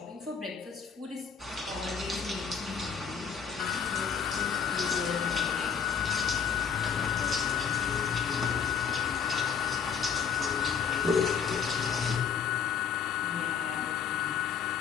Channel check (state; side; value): quieter; right; 7.0 dB